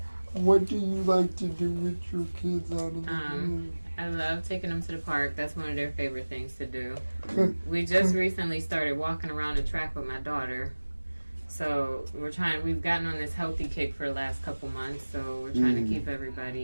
what do you like to do with your kids out in the community? I love taking them to the park. That's one of their favorite things to do. We just recently started walking around the track with my daughter. So we've gotten on this healthy kick for the last couple months. So we're trying to keep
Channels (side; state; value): both; inverted; correlation -1.00